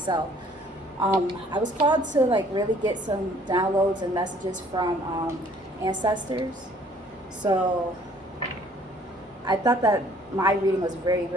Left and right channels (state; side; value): normal; both; correlation 0.58